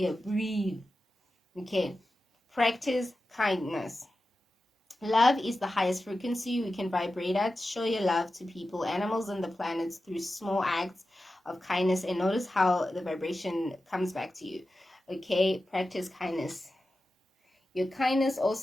breathe. Okay, practice kindness. Love is the highest frequency we can vibrate at. Show your love to people, animals, and the planets through small acts of kindness, and notice how the vibration comes back to you. Okay, practice kindness. Your kindness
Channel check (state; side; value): normal; both; correlation 0.93